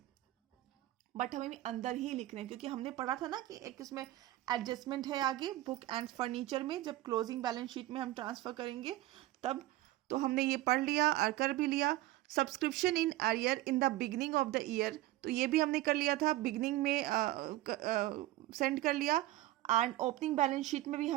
बट हमें अंदर ही लिखना है क्योंकि हमने पढ़ा था ना कि एक इसमें एडजस्टमेंट है आगे बुक एंड फर्नीचर में, जब क्लोजिंग बैलेंस शीट में हम ट्रांसफर करेंगे तब, तो हमने ये पढ़ लिया और कर भी लिया। Subscription in arrear in the beginning of the year, तो ये भी हमने कर लिया था, बिगनिंग में सेंड कर लिया एंड ओपनिंग बैलेंस शीट में भी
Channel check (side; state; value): left; quieter; 16.2 dB